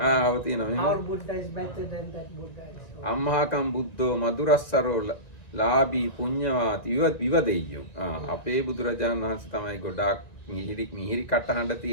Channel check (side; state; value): right; late; 1.9 ms